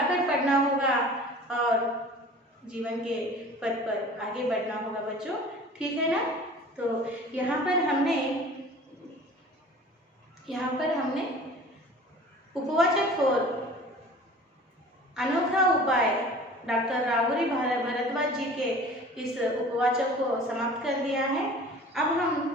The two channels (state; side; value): normal; both; correlation 0.44